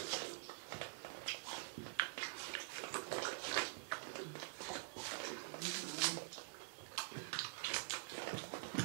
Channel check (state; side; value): silent; left; digital silence